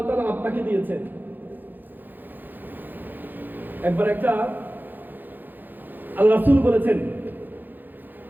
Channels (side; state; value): left; late; 0.088 ms